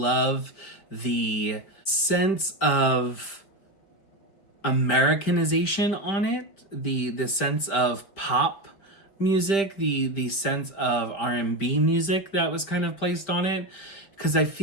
the sense of Americanization on it. The sense of pop music, the sense of R&B music that was kind of placed on it, because I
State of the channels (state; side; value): late; right; 5.1 ms